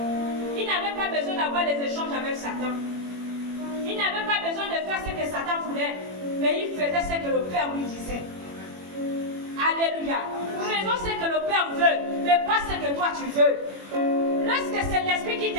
Il n'avait pas besoin d'avoir des échanges avec Satan. Il n'avait pas besoin de faire ce que Satan voulait, mais il faisait ce que le Père lui disait. Alléluia. Faisons ce que le Père veut, mais pas ce que toi tu veux. Lorsque c'est l'Esprit qui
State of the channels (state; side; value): late; left; 21 ms